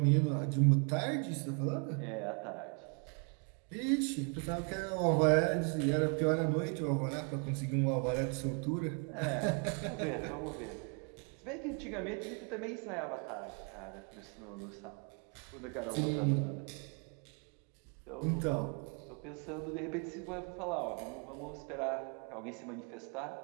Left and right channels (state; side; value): quieter; left; 37.9 dB